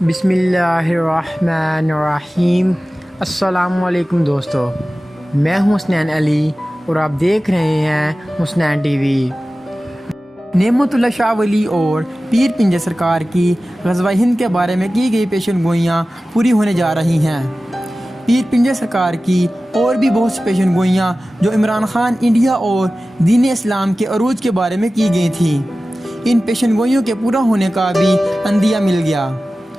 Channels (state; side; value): normal; both; correlation 0.96